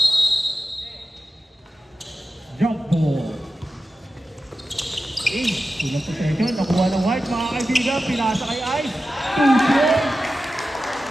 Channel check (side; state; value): both; normal; correlation 0.93